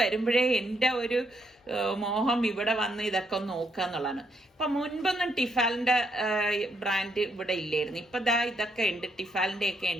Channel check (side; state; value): both; normal; correlation 0.74